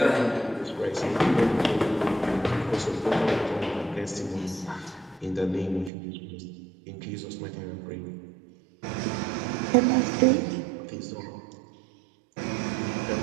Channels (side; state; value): left; drops out; at 5.9 s